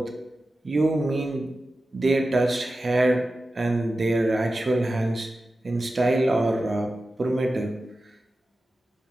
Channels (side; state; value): both; normal; correlation 0.93